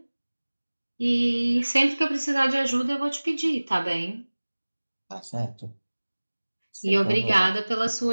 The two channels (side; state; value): both; inverted; correlation -1.00